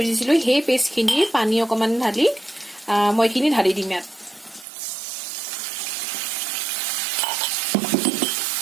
দিছিলো সেই পেষ্টখিনি পানী অকমান ঢালি মই এইখিনি ঢালি দিম ইয়াত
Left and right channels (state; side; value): drops out; left; at 4.7 s